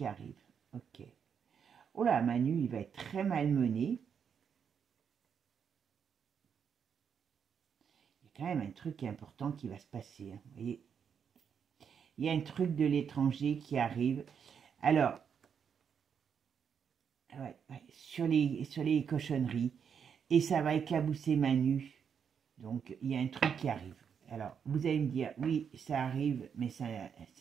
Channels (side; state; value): left; quieter; 7.2 dB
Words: arrive. Ok. Oh là, Manu, il va être très malmené. Il y a quand même un truc qui est important qui va se passer. Hein. Vous voyez, il y a un truc de l'étranger qui arrive. Alors, sur les cochonneries. Et ça va éclabousser Manu. Donc, il y a un truc qui arrive. Alors, vous allez me dire, oui, ça arrive, mais